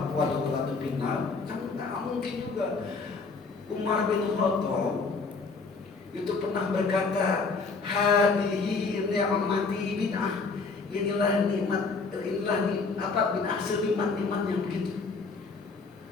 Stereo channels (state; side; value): quieter; right; 4.4 dB